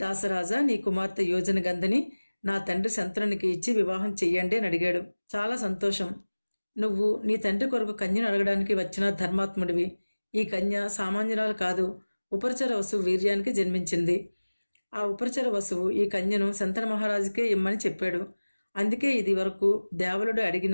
నీ కుమార్తె యోజన గంధని నా తండ్రి శంతనునికి ఇచ్చి వివాహం చెయ్యండి అని అడిగాడు. చాలా సంతోషం. నువ్వు నీ తండ్రి కొరకు కన్యను అడగడానికి వచ్చిన ధర్మాత్ముడివి. ఈ కన్య సామాన్యురాలు కాదు, ఉపరిచర వసువు వీర్యానికి జన్మించింది. ఆ ఉపరిచర వసువు ఈ కన్యను శంతన మహారాజుకే ఇమ్మని చెప్పాడు. అందుకే ఇది వరకు దేవలుడు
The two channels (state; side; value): inverted; both; correlation -1.00